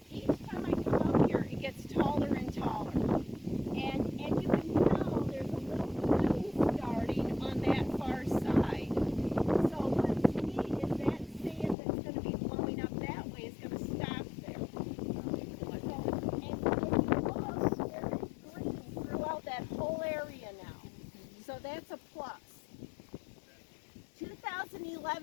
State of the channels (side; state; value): right; drops out; at 11.8 s